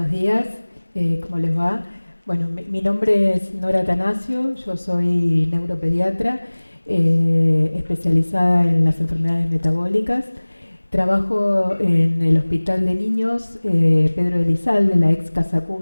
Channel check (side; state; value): both; inverted; correlation -1.00